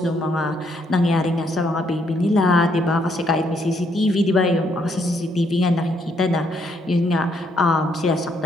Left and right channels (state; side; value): normal; both; correlation 0.72